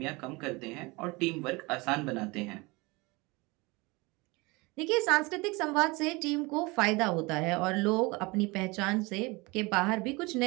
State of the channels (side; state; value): left; quieter; 24.9 dB